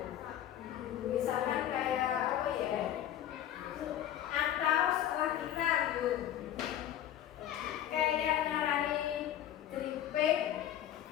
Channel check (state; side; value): quieter; right; 11.5 dB